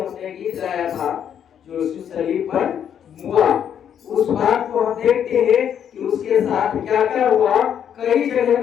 गीत गाया था, जो उस सलीब पर हुआ, उस बात को हम देखते हैं कि उसके साथ क्या क्या हुआ। कई जगह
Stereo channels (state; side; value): quieter; right; 8.9 dB